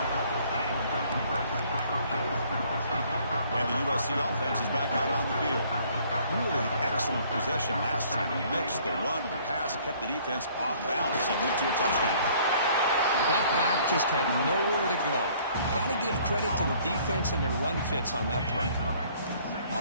And the USC offense is back out on the field. Really excellent possession last time. He mixed the run and the pass, kept the defense off balance and moved to a touchdown. That back just had nowhere to go. Got to give credit to the defense and their run fits on that play.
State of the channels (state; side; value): inverted; both; correlation -0.58